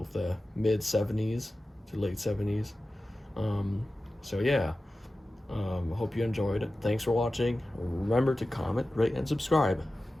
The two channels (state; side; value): normal; both; correlation 0.95